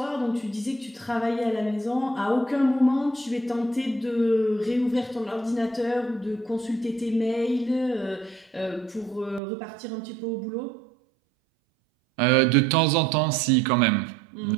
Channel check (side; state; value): left; drops out; at 9.4 s